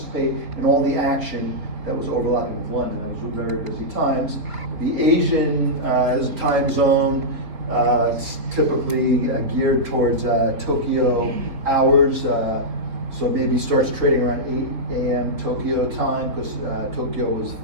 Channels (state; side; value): late; left; 4.4 ms